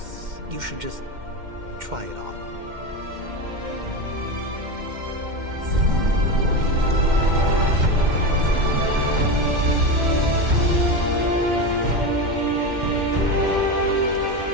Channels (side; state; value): left; late; 2.1 ms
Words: you should just try it on.